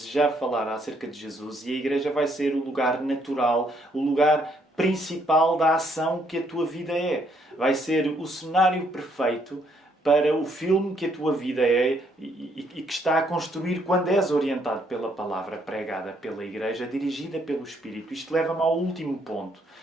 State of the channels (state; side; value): normal; both; correlation 0.70